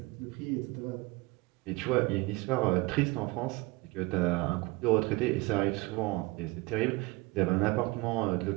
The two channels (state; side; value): quieter; left; 22.9 dB